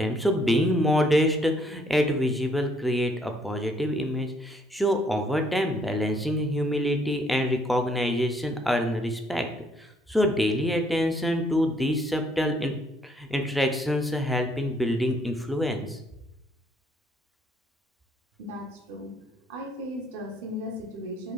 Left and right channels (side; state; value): both; normal; correlation 0.67